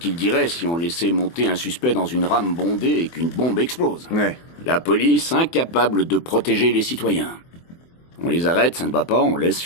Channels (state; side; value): late; right; 24 ms